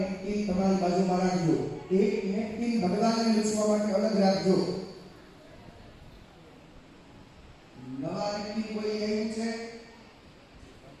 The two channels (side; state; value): both; identical; correlation 1.00